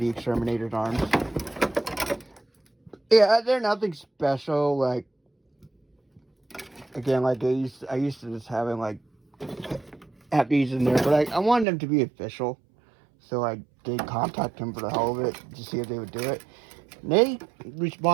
exterminated arms. Yeah, they're nothing special. Like again, like I used to just having like have these in there, but I wanted them to be official. So I did contact them for the hell of it to see if they would do it. And they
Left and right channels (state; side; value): drops out; left; at 11.7 s